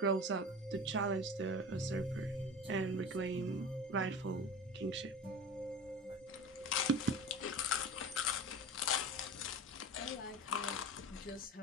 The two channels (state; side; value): normal; both; correlation 0.33